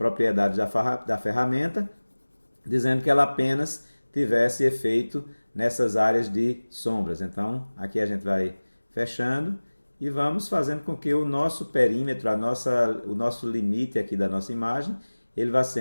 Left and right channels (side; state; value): both; inverted; correlation -1.00